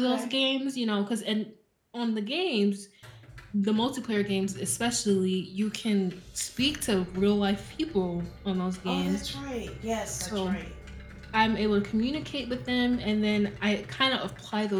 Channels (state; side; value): identical; both; correlation 1.00